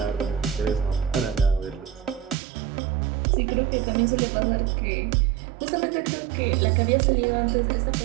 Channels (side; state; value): left; drops out; at 2.4 s